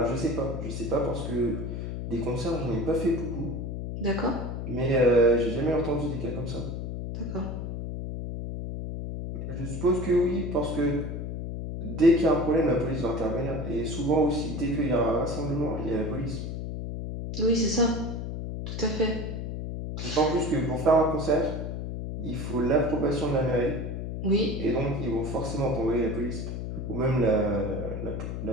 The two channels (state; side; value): noise; left; hum, 5 dB below the sound